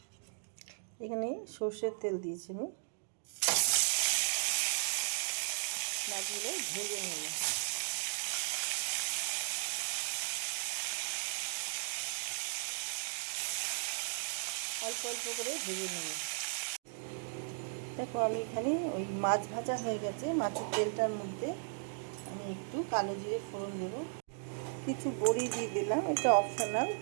এখানে সর্ষের তেল দিয়েছি আমি, মাছগুলো ভেজে নেব। অল্প অল্প করে ভেজে নেব। দেখো আমি এখানে ওই মাছ ভাজা হয়ে গেছে, মাছের তেলটার মধ্যে আমি একটু কালো জিরে ফোড়ন দেব, কিছু বড়ি দিয়ে দিলাম, এটা অপশনাল,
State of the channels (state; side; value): silent; left; digital silence